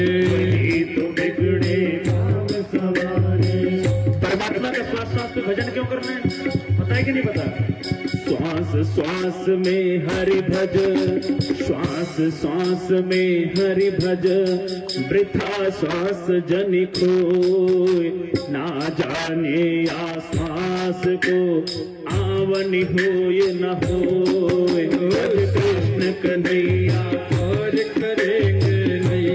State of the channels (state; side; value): identical; both; correlation 1.00